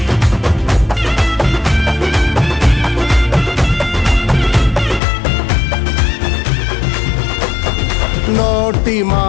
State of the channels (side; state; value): right; drops out; at 5.0 s